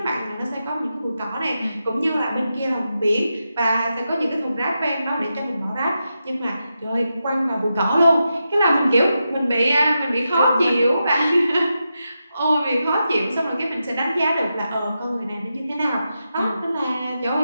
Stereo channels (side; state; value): both; inverted; correlation -0.88